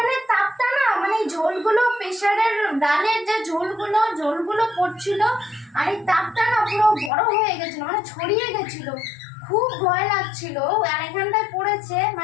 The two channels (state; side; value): drops out; right; at 7.1 s